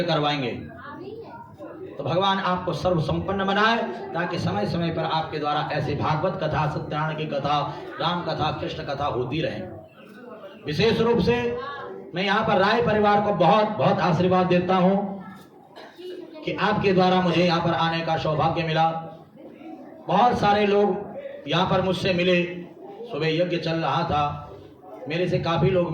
करवाएंगे। तो भगवान आपको सर्व संपन्न बनाए, ताकि समय समय पर आपके द्वारा ऐसे भागवत कथा, सत्यनारायण की कथा, राम कथा, कृष्ण कथा होती रहे। विशेष रूप से मैं यहाँ पर राय परिवार को बहुत बहुत आशीर्वाद देता हूँ कि आपके द्वारा मुझे यहाँ पर आने का सौभाग्य मिला। बहुत सारे लोग यहाँ पर मुझसे मिले, सुबह यज्ञ चल रहा था, मेरे से काफी लोग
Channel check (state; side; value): identical; both; correlation 1.00